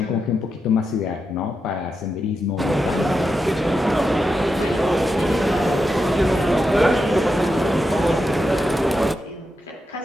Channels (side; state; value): both; normal; correlation 0.87